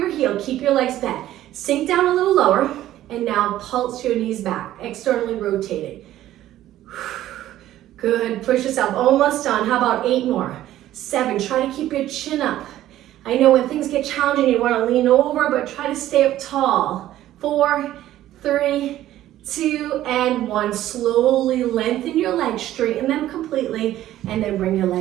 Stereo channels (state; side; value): quieter; left; 13.6 dB